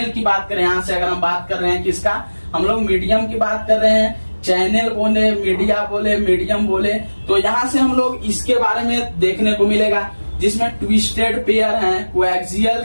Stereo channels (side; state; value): both; inverted; correlation -1.00